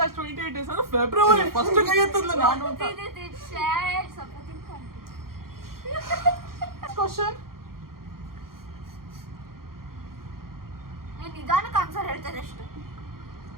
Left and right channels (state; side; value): late; left; 0.92 ms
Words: has 28 days ಅಂದ್ರೆ ಫೆಬ್ರವರಿ. ಫಸ್ಟ್ ಕೈ ಎತ್ತದ್ಲ ನಾನು ಅಂತ. ಕ್ವಶನ್. ನಿಧಾನಕ್ಕೆ ಆನ್ಸರ್ ಹೇಳ್ತಾರೆ ಅಷ್ಟು.